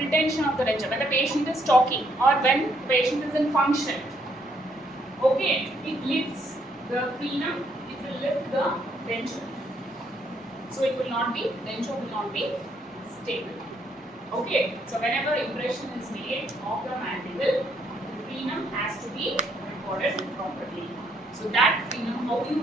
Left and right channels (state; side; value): normal; both; correlation 0.71